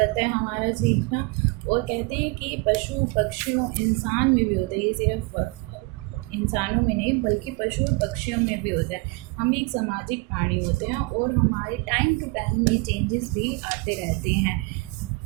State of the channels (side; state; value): left; quieter; 25.9 dB